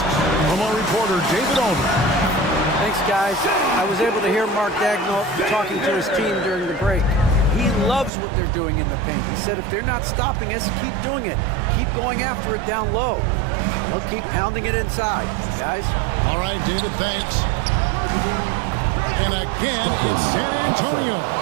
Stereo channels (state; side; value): drops out; left; at 8.1 s